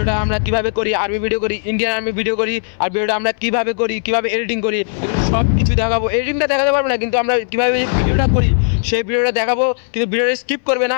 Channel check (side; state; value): right; silent; 64 dB below the other